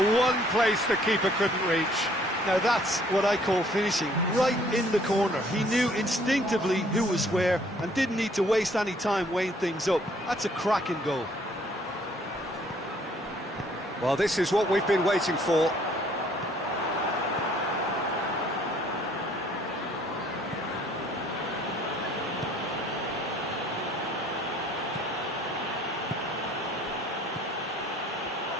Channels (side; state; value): both; normal; correlation 0.60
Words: one place the keeper couldn't reach. Now that's what I call finishing, right in the corner. He knew instinctively who was where and didn't need to waste any time weighing things up. That's a cracking goal. Well, this is what we've been waiting for.